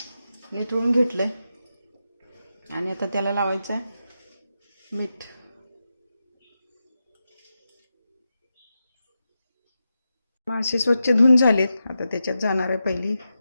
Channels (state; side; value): inverted; both; correlation -0.89